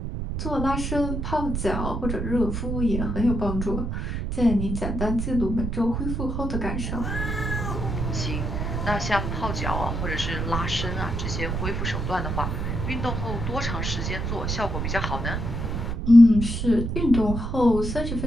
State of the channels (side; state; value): right; noise; rumble, 2 dB below the sound